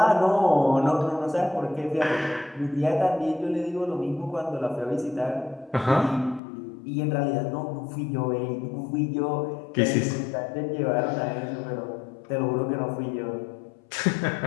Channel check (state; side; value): drops out; right; at 6.4 s